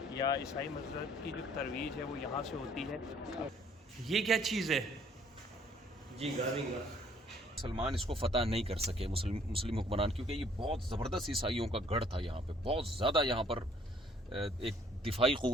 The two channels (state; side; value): normal; both; correlation 0.61